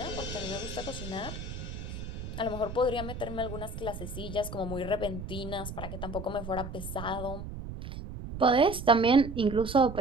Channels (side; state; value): right; noise; rumble, 8 dB below the sound